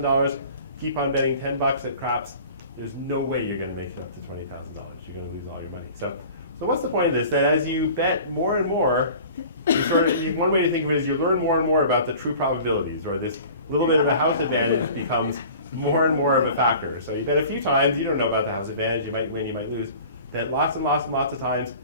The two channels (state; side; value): inverted; both; correlation -0.44